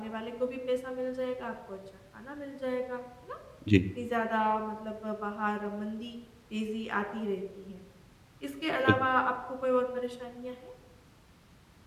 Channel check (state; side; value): identical; both; correlation 1.00